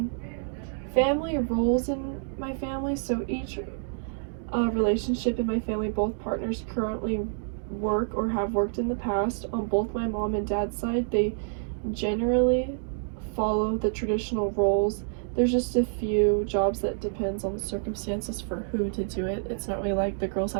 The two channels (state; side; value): silent; left; digital silence